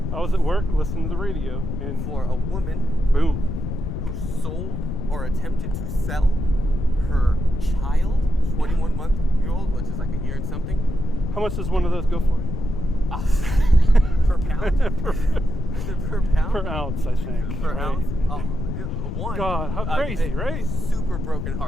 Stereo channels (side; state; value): left; noise; rumble, 4 dB below the sound